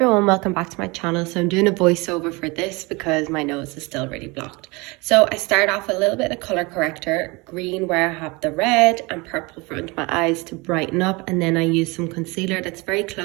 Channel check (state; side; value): quieter; left; 25.7 dB